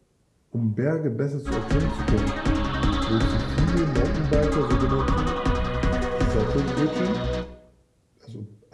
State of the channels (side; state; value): both; identical; correlation 1.00